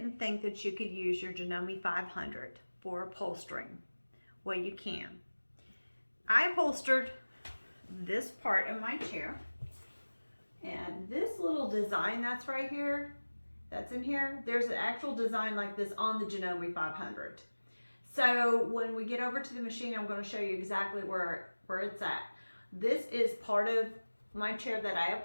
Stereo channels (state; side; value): inverted; both; correlation -1.00